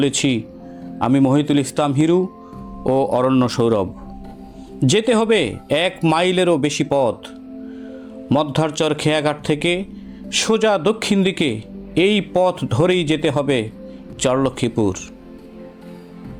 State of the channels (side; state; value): both; identical; correlation 1.00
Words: আমি মহিতুল ইসলাম হিরু ও অরণ্য সৌরভ। যেতে হবে ১ মাইলেরও বেশি পথ। মধ্যারচর খেয়াঘাট থেকে সোজা দক্ষিণ দিকে এই পথ ধরেই যেতে হবে চরলক্ষ্মীপুর।